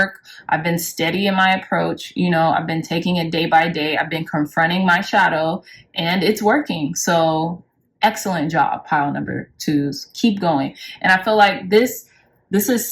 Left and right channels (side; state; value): both; identical; correlation 1.00